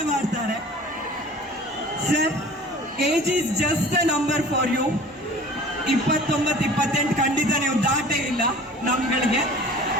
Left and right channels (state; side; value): normal; both; correlation 0.44